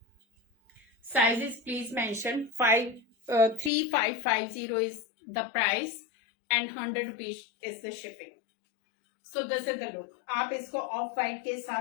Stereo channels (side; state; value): right; drops out; at 3.7 s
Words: Sizes please mention 3550 is the price and 100 rupees is the shipping. So this is the look. आप इसको ऑफ वाइट के